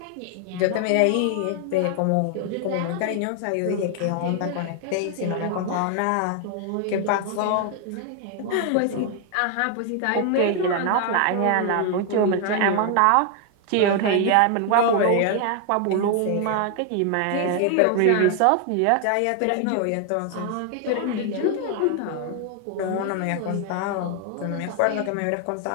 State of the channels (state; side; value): different; both; correlation 0.00